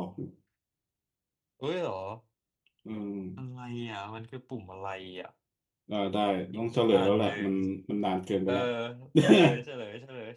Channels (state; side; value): identical; both; correlation 1.00